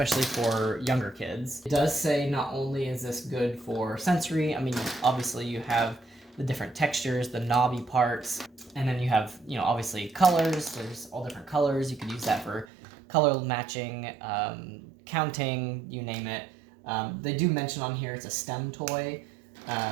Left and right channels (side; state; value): left; drops out; at 12.7 s